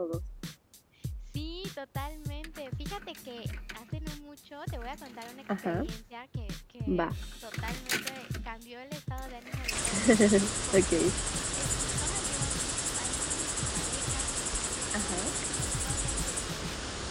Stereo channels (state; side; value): identical; both; correlation 1.00